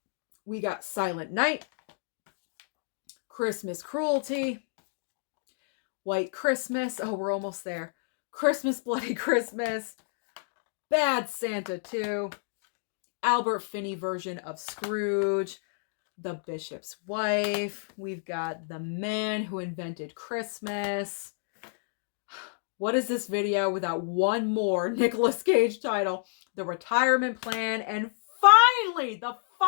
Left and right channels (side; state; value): right; silent; digital silence